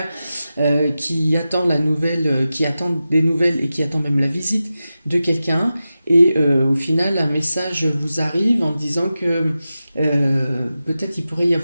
qui attend la nouvelle, qui attend des nouvelles et qui attend même la visite de quelqu'un. Et au final, un message vous arrive en disant que peut-être il pourrait y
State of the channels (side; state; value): both; inverted; correlation -0.93